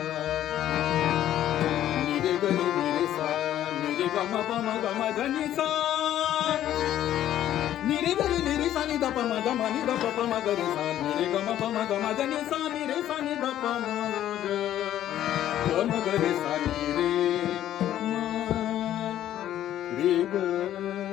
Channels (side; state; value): right; quieter; 12.1 dB